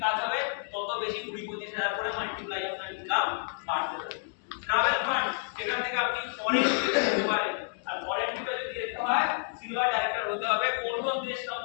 কাজ হবে, তত বেশি 20-25 হাজার করে মাল্টিপ্লাই আপনার ইনকাম বাড়তে থাকবে। ট্রাভেল ফান্ড সেখান থেকে আপনি ফরেন যেতে পারেন আর ফরেন ট্রিপে যদি যেতে হয় সিলভার ডাইরেক্টর হতে হবে। কোন কোন দেশ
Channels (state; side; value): silent; right; 58 dB below the other